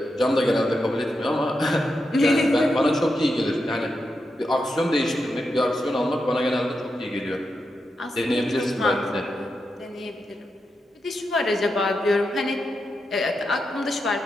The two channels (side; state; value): both; normal; correlation 0.86